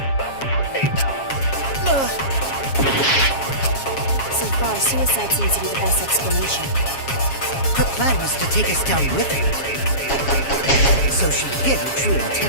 So far, suicide seems to be the best explanation. Her plan was to take us down with her, so she hid her true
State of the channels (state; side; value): late; right; 7.4 ms